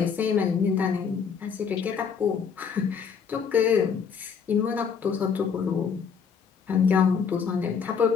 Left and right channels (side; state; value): right; quieter; 6.4 dB